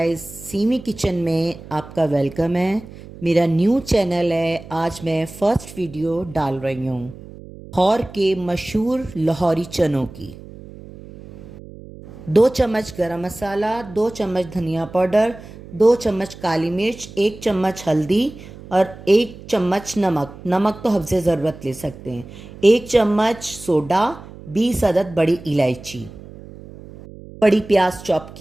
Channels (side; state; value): right; noise; hum, 17 dB below the sound